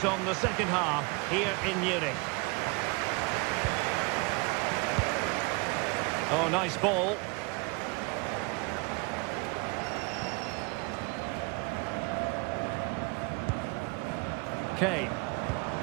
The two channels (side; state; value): left; quieter; 28.4 dB